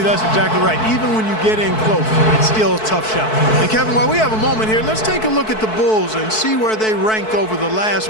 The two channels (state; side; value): late; right; 4.6 ms